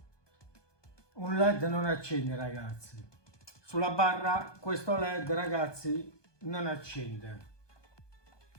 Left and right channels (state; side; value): late; right; 1.2 ms